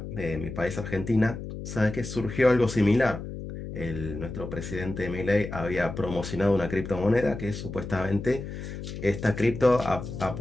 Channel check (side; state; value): left; noise; hum, 9 dB below the sound